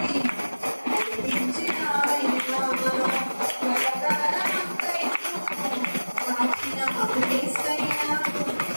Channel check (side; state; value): both; inverted; correlation -1.00